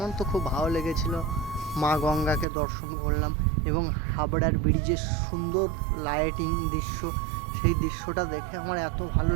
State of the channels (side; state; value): left; drops out; at 2.5 s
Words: তো খুব ভালো লেগেছিল। মা গঙ্গাকে দর্শন করলাম এবং হাবড়ার ব্রিজের সুন্দর লাইটিং দৃশ্য, সেই দৃশ্যটা দেখে আমার এত ভালো